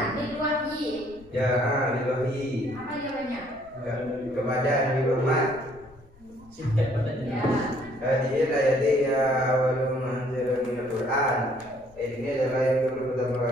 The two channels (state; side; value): noise; left; rumble, 26 dB below the sound